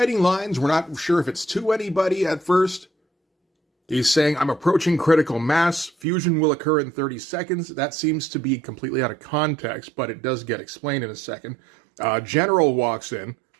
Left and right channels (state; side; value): drops out; left; at 6.1 s